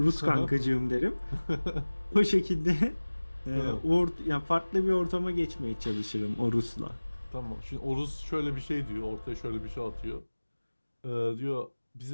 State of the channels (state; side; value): inverted; both; correlation -1.00